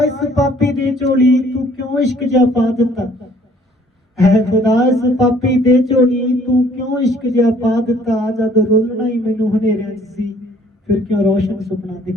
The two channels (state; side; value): normal; both; correlation 0.58